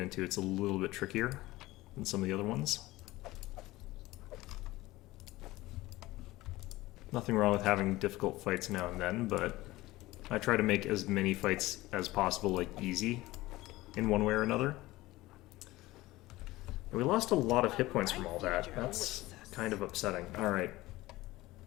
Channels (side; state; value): right; quieter; 18.5 dB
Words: It's a little bit trickier than some of the other ones. Nothing wrong with having difficult fights now and then, but I try to make as many fights as possible, like, easy in one way or another. And we lost a lot of hit points from all that. That's kind of upsetting. Alright.